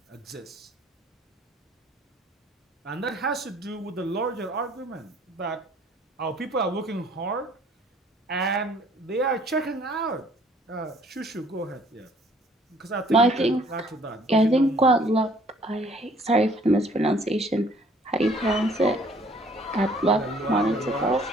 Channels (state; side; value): normal; both; correlation 0.58